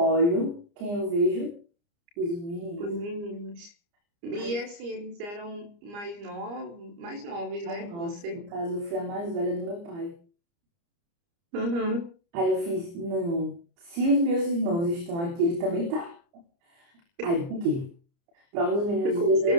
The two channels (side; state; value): left; late; 29 ms